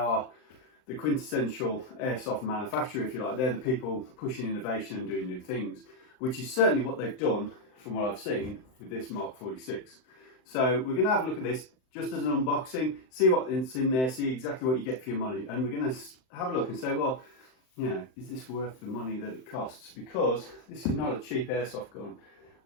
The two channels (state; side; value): late; right; 39 ms